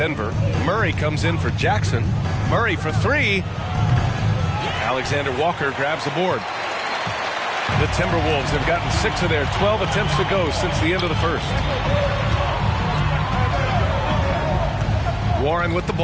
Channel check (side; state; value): both; identical; correlation 1.00